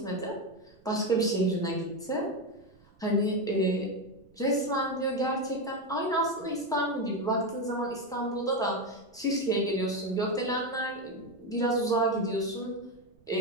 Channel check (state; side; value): noise; right; rumble, 29 dB below the sound